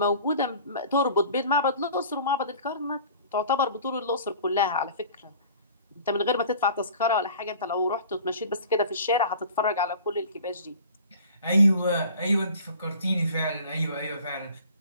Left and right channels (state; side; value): inverted; both; correlation -0.45